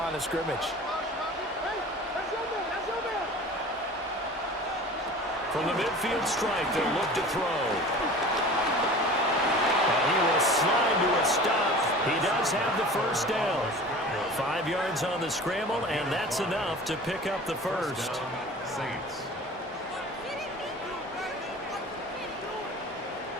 of scrimmage. From the midfield stripe, they'll look to throw. And he will slide to a stop. He does have the 1st down. 5 yards on the scramble, and that's enough to pick up the 1st. Saints.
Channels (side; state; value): both; normal; correlation 0.40